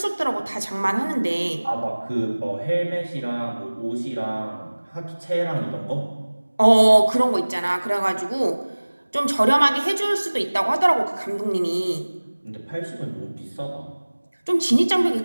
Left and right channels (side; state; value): both; inverted; correlation -1.00